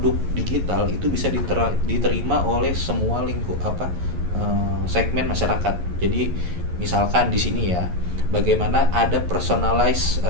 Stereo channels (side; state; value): left; late; 11 ms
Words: digital itu bisa diterima oleh semua segmen masyarakat. Jadi misalkan di sini ya, bagaimana ada personalized